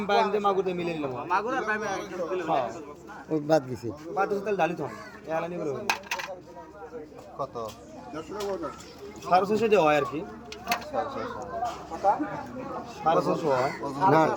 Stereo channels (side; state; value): both; identical; correlation 1.00